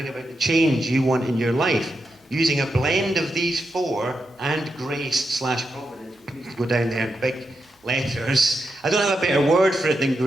about the change you want in your life, using a blend of these four and grace/providence, which needs to go down there in big letters. I don't have a better word for it than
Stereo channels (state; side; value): normal; both; correlation 0.86